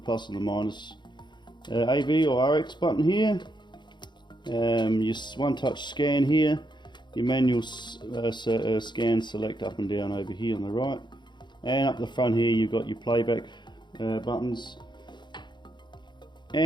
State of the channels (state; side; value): late; right; 0.22 ms